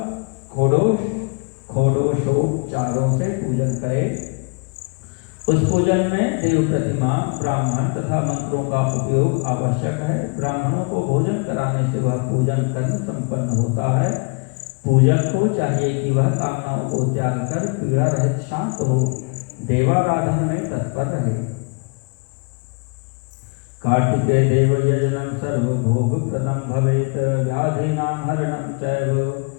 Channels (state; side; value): quieter; right; 34.2 dB